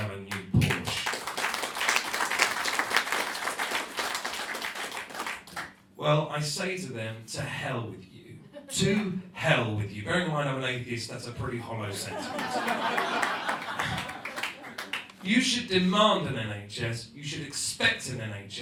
a new Porsche. Well, I say to them, to hell with you. To hell with you. Bearing in mind I'm an atheist, that's a pretty hollow sentiment. You should demand an NHS, you should expect an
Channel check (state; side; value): identical; both; correlation 1.00